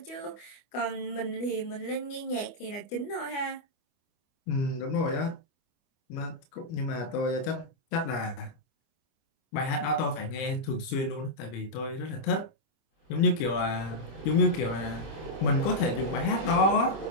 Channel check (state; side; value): late; right; 25 ms